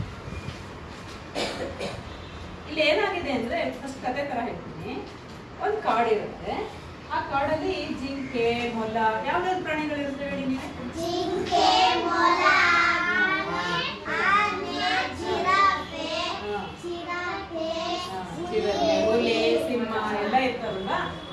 ಇಲ್ಲಿ ಏನಾಗಿದೆ ಅಂದ್ರೆ, ಫಸ್ಟ್ ಕತೆ ತರ ಹೇಳ್ತೀನಿ. ಒಂದು ಕಾಡಿರುತ್ತೆ. ಆ ಕಾಡಲ್ಲಿ ಜಿಂಕೆ, ಮೊಲ, ಯಾವ್ದಾದ್ರು ಪ್ರಾಣಿಗಳಿರುತ್ತೆ ಹೇಳಿ ನೀವು? ಜಿಂಕೆ, ಮೊಲ, ಆನೆ, ಜಿರಾಫೆ, ಹುಲಿ, ಸಿಂಹ ಎಲ್ಲ ಇರ್ತಾರಲ್ಲ.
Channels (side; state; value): both; identical; correlation 1.00